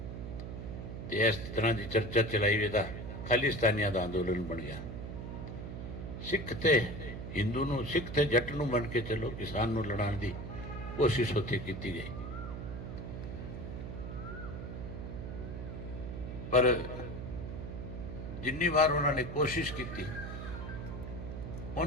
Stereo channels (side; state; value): right; noise; hum, 7 dB below the sound